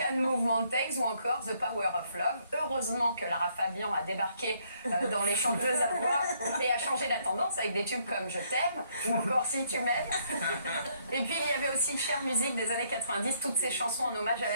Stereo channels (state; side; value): inverted; both; correlation -0.70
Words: Move Mountains ou encore The Power of Love. Heureusement que Lara Fabian a débarqué dans les chanteuses à voix et a changé la tendance avec des tubes comme Je t'aime ou encore Si tu m'aimes. Et puis il y avait aussi Chère musique des années 90, toutes ces chansons en hommage à